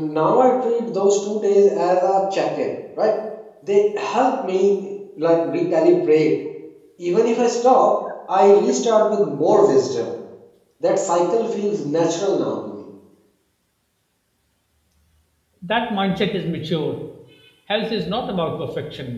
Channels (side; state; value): both; identical; correlation 1.00